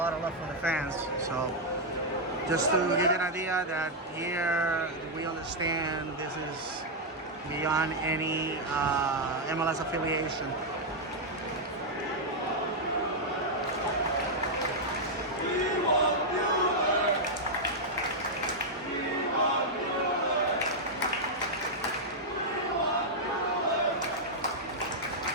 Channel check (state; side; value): normal; both; correlation -0.03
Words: of love from the fans. So just to give you an idea that here we understand this is beyond any MLS affiliation.